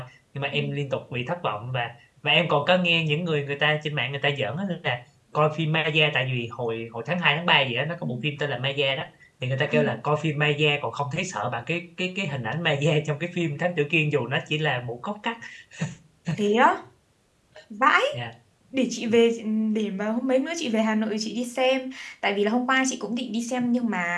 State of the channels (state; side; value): identical; both; correlation 1.00